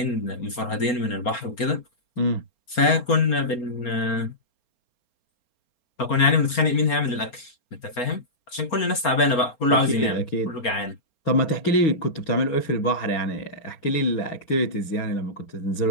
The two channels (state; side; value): late; right; 4.3 ms